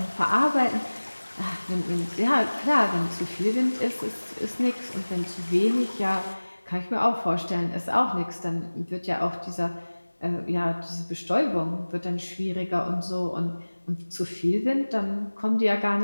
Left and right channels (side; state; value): both; inverted; correlation -1.00